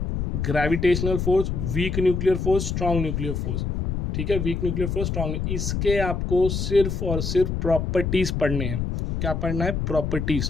gravitational force, weak nuclear force, strong nuclear force, ठीक है, वीक न्यूक्लियर फोर्स, स्ट्रॉन्ग, इसके आपको सिर्फ और सिर्फ प्रॉपर्टीज पढ़ने हैं। क्या पढ़ना है?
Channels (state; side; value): noise; left; rumble, 2 dB below the sound